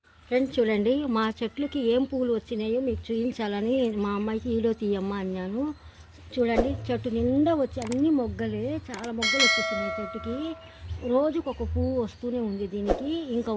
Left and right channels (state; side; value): identical; both; correlation 1.00